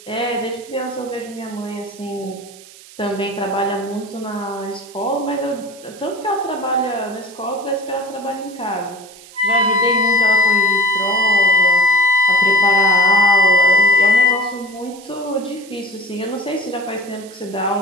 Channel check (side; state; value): right; noise; hiss, 21 dB below the sound